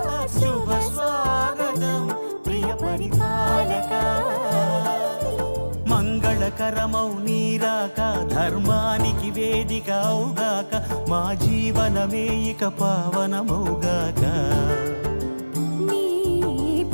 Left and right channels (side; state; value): both; inverted; correlation -1.00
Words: శుభ స్వాగతం ప్రియ పరిపాలక మంగళకరమౌ నీరాక ధర్మానికి వేదిక అవుగాక మా జీవనమే ఇక పావనమౌగాక నీ